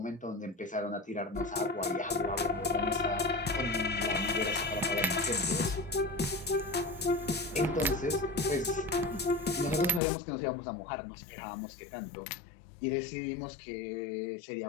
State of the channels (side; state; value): right; drops out; at 10.0 s